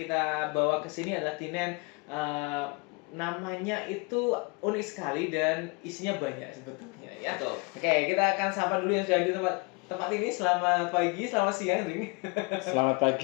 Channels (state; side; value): quieter; right; 29.8 dB